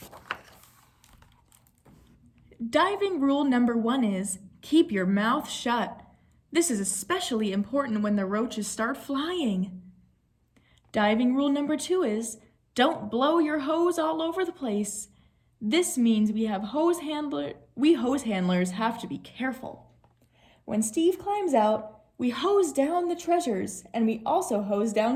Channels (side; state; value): both; identical; correlation 1.00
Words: Diving rule number 1 is keep your mouth shut. This is especially important when the roaches start flying. Diving rule number 2 is don't blow your hose all over the place. This means we hose handlers have to be careful. When Steve climbs out, we hose down the treasures, and we also hose